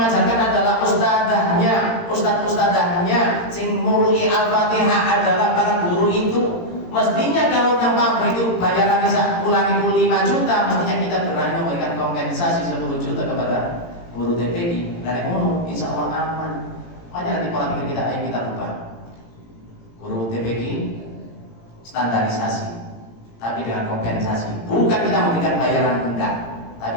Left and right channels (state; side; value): late; right; 18 ms